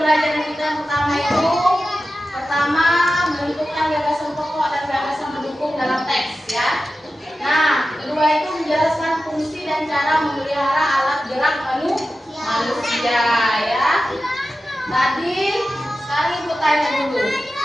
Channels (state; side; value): normal; both; correlation 0.93